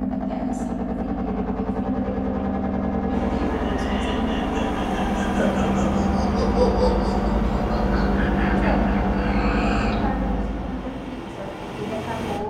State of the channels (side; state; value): both; identical; correlation 1.00